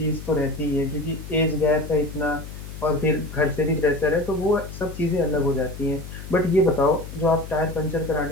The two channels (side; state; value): left; noise; hum, 11 dB below the sound